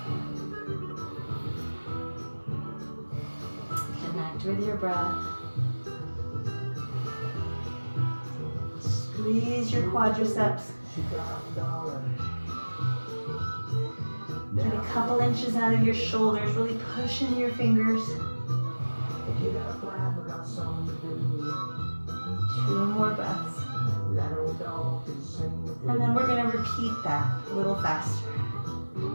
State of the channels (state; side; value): inverted; both; correlation -1.00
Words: Connect with your breath. Squeeze your quadriceps. Get a couple inches out of your shoulders, really push into your fingers. 2 more breaths. And then we're going to repeat that a little faster.